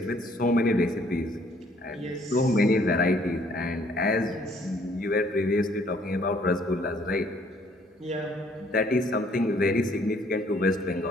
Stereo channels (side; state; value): both; normal; correlation 0.62